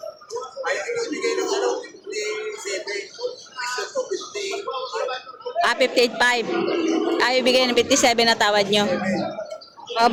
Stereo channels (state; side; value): identical; both; correlation 1.00